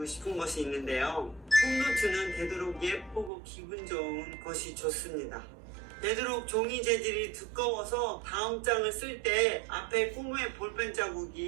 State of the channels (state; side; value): drops out; left; at 3.3 s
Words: 싶은 것이 있는데요. 홈노트는 되도록 예쁘고 기분 좋은 것이 좋습니다. 되도록 종이 재질이 두꺼워서 다음 장을 쓸 때 앞에 꿈의 볼펜